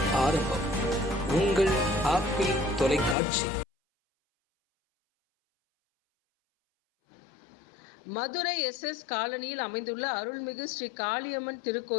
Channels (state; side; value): drops out; right; at 3.2 s